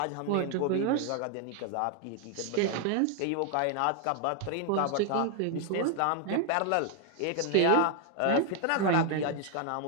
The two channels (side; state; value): both; different; correlation 0.00